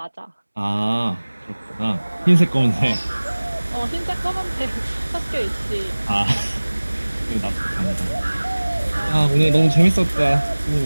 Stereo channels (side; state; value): both; inverted; correlation -1.00